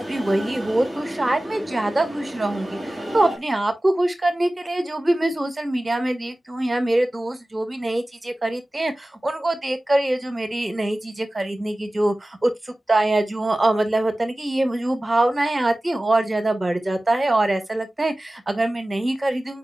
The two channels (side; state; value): both; normal; correlation 0.97